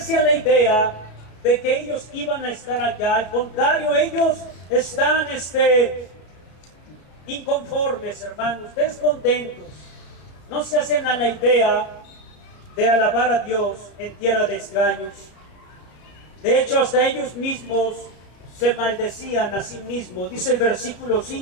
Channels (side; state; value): right; late; 33 ms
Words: a la idea de que ellos iban a estar allá. Al contrario, ellos están inconformes, hermanos, descontentos. No se hacen a la idea de alabar a Dios en tierra de extraños. De hecho, hasta ellos mismos se maldecían a sí mismos. Dice el versículo